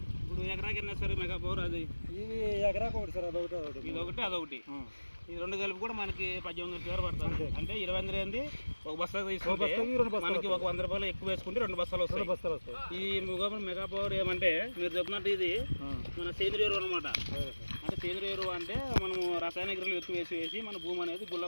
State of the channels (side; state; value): both; inverted; correlation -1.00